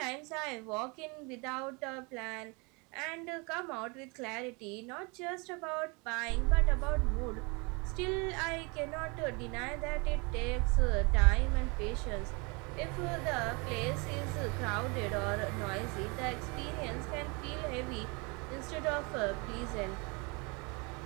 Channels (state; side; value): quieter; left; 30.0 dB